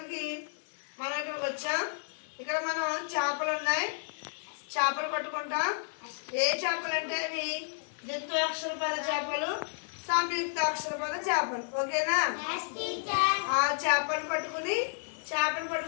మనం ఇక్కడికి వచ్చాం. ఇక్కడ మనం చేపలు ఉన్నాయి, చేపలు పట్టుకుంటాం. ఏ చేపలు అంటే అవి ద్విత్వాక్షరపద చేపలు, సంయుక్తాక్షరపద చేపలు. ఓకేనా? ఆ చేపలు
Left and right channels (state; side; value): silent; right; digital silence